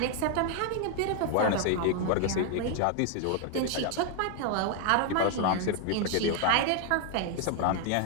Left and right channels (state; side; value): different; both; correlation 0.00